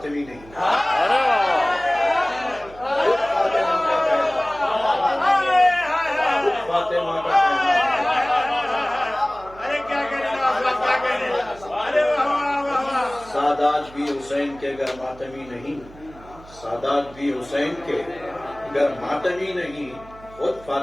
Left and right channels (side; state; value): right; noise; hum, 21 dB below the sound